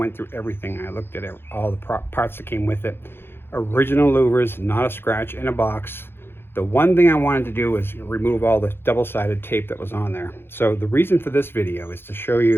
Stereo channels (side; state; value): right; late; 0.11 ms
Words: through everything. I looked at it, all the parts that came with it. Original louvers, not a scratch in a box. The one thing I wanted to do was remove all the double-sided tape that was on there. So the reason for this video is to show